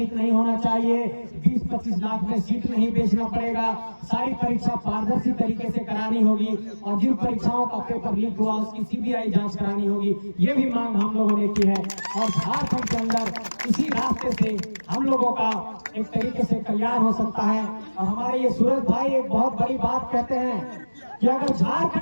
नहीं होना चाहिए, 20-25 लाख में सीट नहीं बेचना पड़ेगा, सारी परीक्षा पारदर्शी तरीके से करानी होगी और जिन परीक्षाओं का पेपर लीक हुआ उसकी CBI जांच करानी होगी। ये भी मांग हम लोगों ने की है और झारखंड के अंदर इसी रास्ते से हम लोगों का एक तरीके से कल्याण हो सकता है। और हमारे ये सूरज भाई एक बहुत बड़ी बात कहते हैं कि कि अगर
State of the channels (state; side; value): inverted; both; correlation -1.00